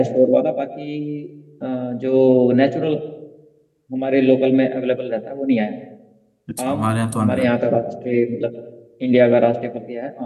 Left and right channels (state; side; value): identical; both; correlation 1.00